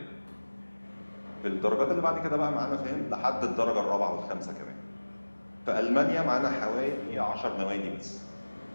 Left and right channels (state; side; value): inverted; both; correlation -1.00